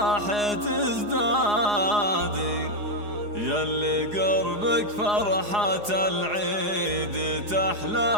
تزدادي، ياللي قربك فرحة العيد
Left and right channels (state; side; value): late; left; 4.8 ms